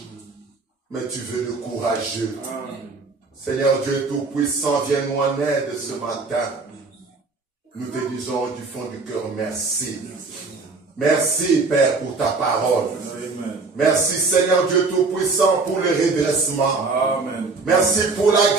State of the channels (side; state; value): left; quieter; 3.9 dB